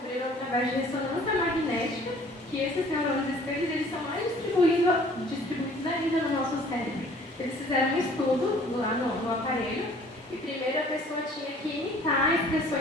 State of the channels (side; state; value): both; normal; correlation 0.53